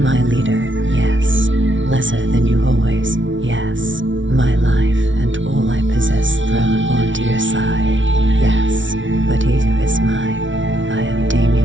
leader, yes. Lesser than you always, yes. My life and all I possess thrown onto your side, yes. But Izu is mine. I am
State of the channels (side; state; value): left; late; 0.56 ms